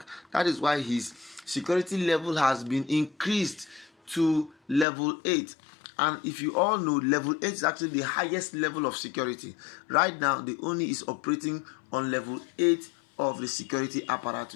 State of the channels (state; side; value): drops out; right; at 4.9 s